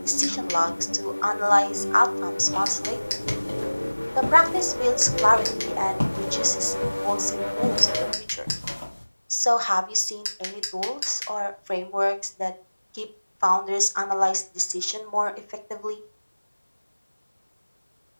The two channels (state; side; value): inverted; both; correlation -1.00